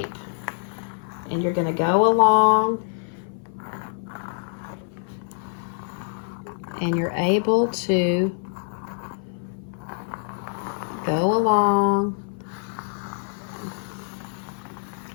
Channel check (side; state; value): right; silent; 57 dB below the other